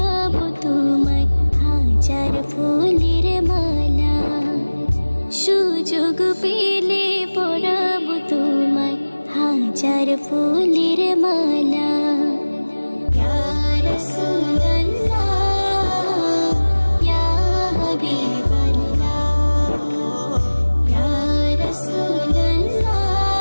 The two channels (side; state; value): both; inverted; correlation -1.00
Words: তোমায় হাজার ফুলের মালা। সুযোগ পেলে পরাবো তোমায় হাজার ফুলের মালা। ইয়া রাসূলুল্লাহ ইয়া হাবিবাল্লাহ ইয়া রাসূলুল্লাহ